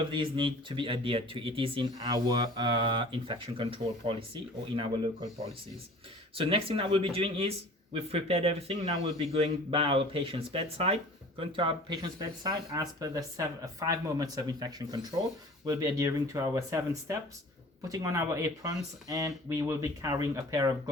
these need to be adhered to. It is in our infection control policy or in our local policies. So next thing that we'll be doing is, we've prepared everything. Now we'll be going by our patient's bedside. Going to our patient's bedside as per the 5 moments of infection control. We'll be adhering to our 7 steps, putting on our aprons, and we will be carrying a pair of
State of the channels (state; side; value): normal; both; correlation 0.44